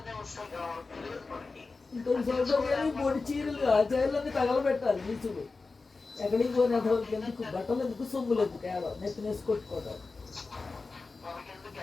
వస్తాయి కావాలి, తెలియదు మనకి. మూడు చీరలు చీరలన్నీ తగలబెట్టాలి నీచుడు. ఎక్కడికి పోయిన ఎందుకు, బట్టలు ఎందుకు, సొమ్ములు ఎందుకు, ఏడో నెత్తినేసి కొట్టుకోవడం, మనకెందుకు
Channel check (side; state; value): right; quieter; 4.0 dB